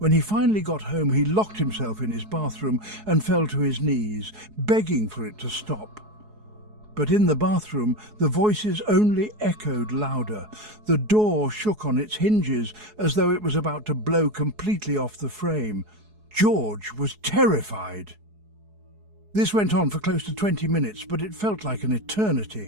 he finally got home, he locked himself in his bathroom and fell to his knees, begging for it to stop. But in the bathroom, the voices only echoed louder. The door shook on its hinges as though it was about to blow completely off the frame. George was terrified. This went on for close to 20 minutes, but it felt like an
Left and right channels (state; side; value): late; left; 4.7 ms